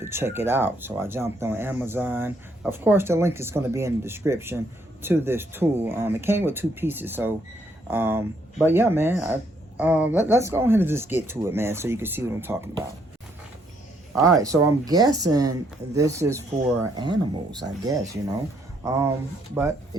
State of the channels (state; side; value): normal; both; correlation 0.71